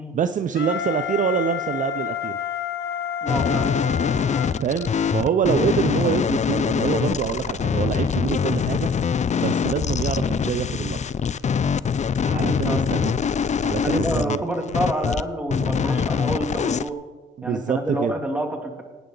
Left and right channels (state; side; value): normal; both; correlation 0.51